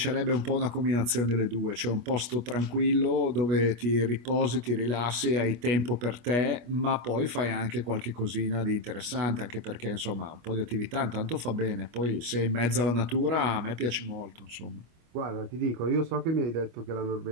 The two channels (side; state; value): left; late; 25 ms